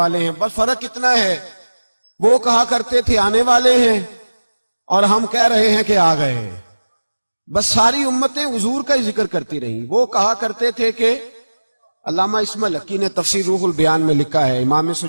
ہیں۔ بس فرق اتنا ہے، وہ کہا کرتے تھے آنے والے ہیں اور ہم کہہ رہے ہیں کہ آ گئے ہیں۔ بس ساری امتیں حضور کا ہی ذکر کرتی رہیں۔ وہ کہا کرتے تھے کہ علامہ اسماعیل حقی نے تفسیر روح البیان میں لکھا ہے، امام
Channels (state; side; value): inverted; both; correlation -1.00